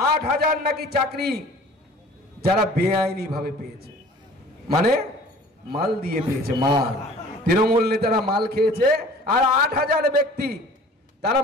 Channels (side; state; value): both; normal; correlation 0.47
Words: 8,000 নাকি চাকরি যারা বেআইনি ভাবে পেয়েছে, মানে মাল দিয়ে পেয়েছে, মাল তৃণমূল নেতারা মাল খেয়েছে। আর 8,000 ব্যক্তি তারা